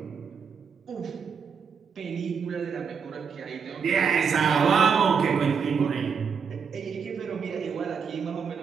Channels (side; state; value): left; quieter; 6.3 dB